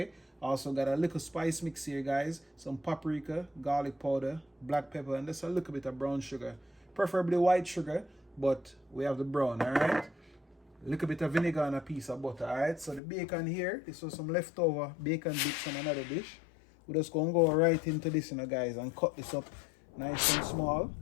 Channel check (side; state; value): right; drops out; at 13.0 s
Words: Also got a little spice mix here, guys, some paprika, garlic powder, black pepper, and just a little bit of brown sugar, preferably white sugar, but we have the brown. All right, a little bit of vinegar and a piece of butter. All right, so the bacon here, this was some leftover bacon bits from another dish. We're just going to go right into this, guys, and cut this up nice and small.